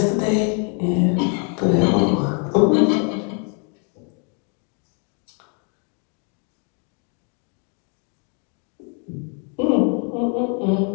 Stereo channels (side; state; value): right; quieter; 38.7 dB